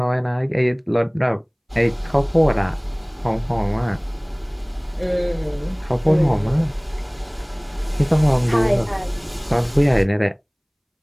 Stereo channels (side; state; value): both; identical; correlation 1.00